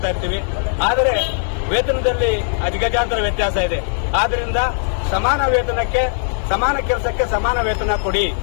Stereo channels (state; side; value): silent; right; digital silence